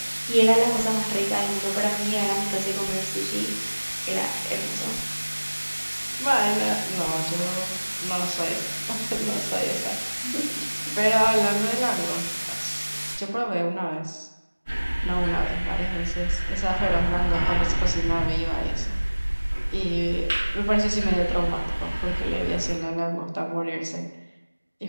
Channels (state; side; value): inverted; both; correlation -1.00